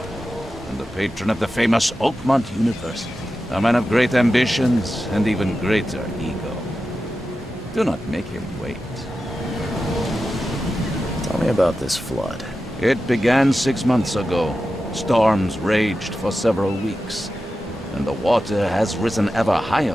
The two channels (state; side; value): normal; both; correlation 0.92